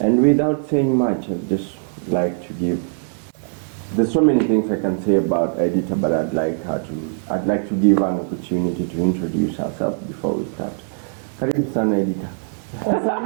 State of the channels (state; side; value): silent; left; digital silence